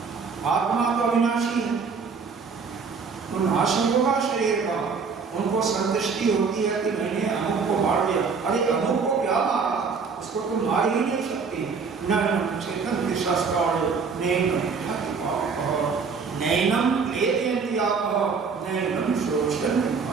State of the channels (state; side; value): quieter; left; 5.3 dB